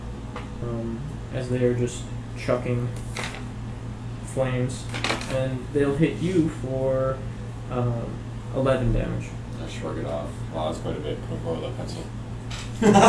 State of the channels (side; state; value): both; identical; correlation 1.00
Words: as they are just chucking flames. And they'll hit you for 11 damage. I shrug it off. Wow, that's quite a bit. Can we borrow that pencil?